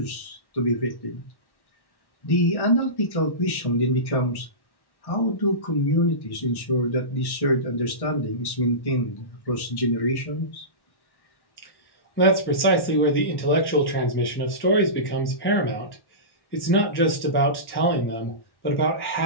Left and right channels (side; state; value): right; late; 1.1 ms